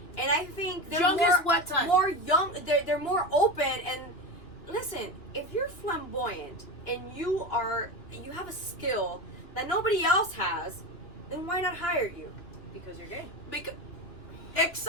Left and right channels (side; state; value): right; late; 2.9 ms